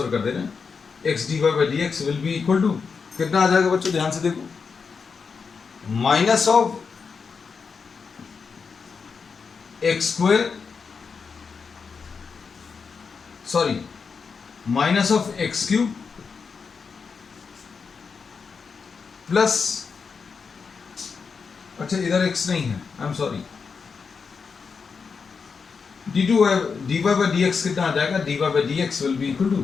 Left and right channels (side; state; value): right; quieter; 5.4 dB